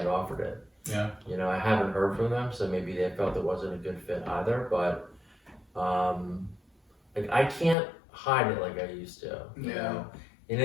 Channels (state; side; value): drops out; right; at 7.8 s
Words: offered it. Yeah. I haven't heard from them, so maybe they felt it wasn't a good fit either, but like I can't hide it like I used to. Yeah. In